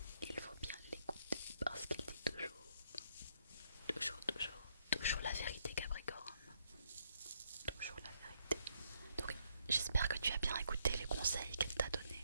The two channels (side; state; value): both; inverted; correlation -0.73